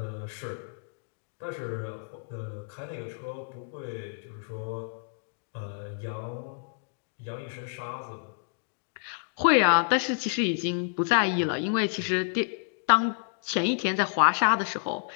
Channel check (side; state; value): right; silent; digital silence